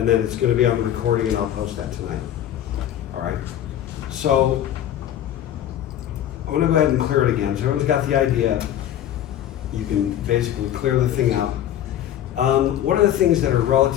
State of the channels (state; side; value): quieter; right; 11.2 dB